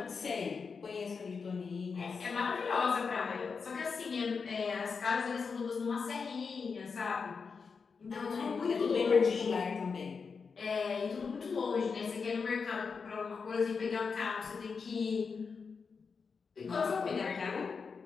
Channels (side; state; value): right; quieter; 5.3 dB